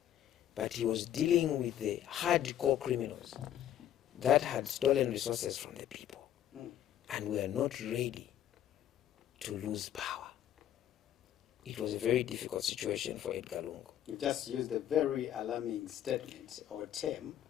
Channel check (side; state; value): right; quieter; 11.1 dB